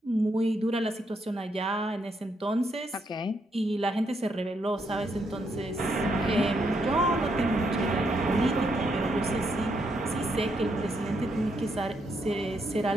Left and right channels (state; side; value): normal; both; correlation 0.77